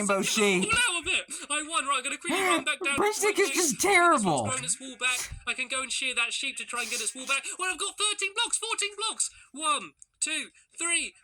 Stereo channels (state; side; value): identical; both; correlation 1.00